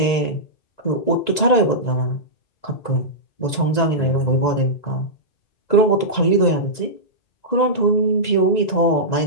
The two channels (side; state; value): right; late; 2.0 ms